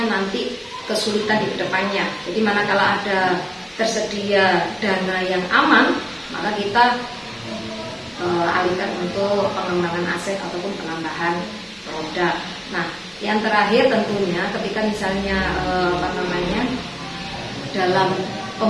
nanti kesulitan di depannya. Jadi manakala ada tersedia dana yang aman, maka kita alihkan untuk pengembangan aset ataupun penambahan produk. Nah, yang terakhir tentunya ketika misalnya dalam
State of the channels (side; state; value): both; identical; correlation 1.00